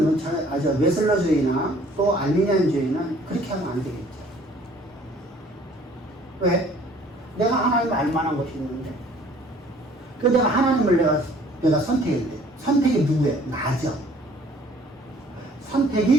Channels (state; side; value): normal; both; correlation 0.56